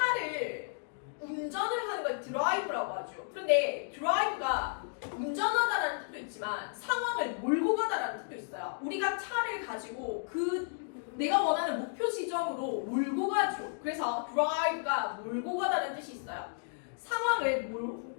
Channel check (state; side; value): silent; right; digital silence